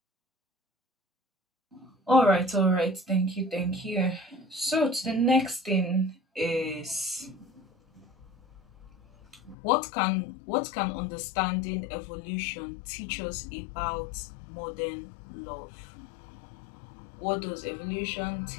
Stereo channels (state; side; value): drops out; right; at 9.6 s